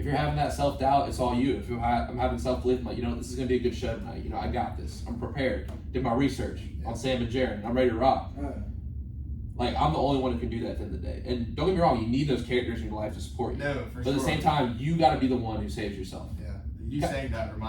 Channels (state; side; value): identical; both; correlation 1.00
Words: you're having that self-doubt, it's all you. If I'm having self-belief, I'm like, this is gonna be a good show tonight. I got this. I'm prepared. Did my research on Sam and Jaron. I'm ready to rock. Like I'm the only one who can do that at the end of the day. And don't get me wrong, you need those characters in your life to support you. No, for but sure. at the same time, you got to be the one who saves yourself. Yeah, you saying that